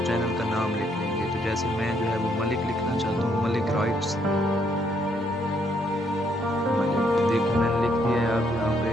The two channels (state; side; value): normal; both; correlation 0.71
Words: चैनल का नाम लिख लेंगे। तो जैसे मैं जो है वो मलिक लिखना चाहता हूँ, मलिक राइट्स। देखिए मैंने लिख दिया है। आप यहाँ पे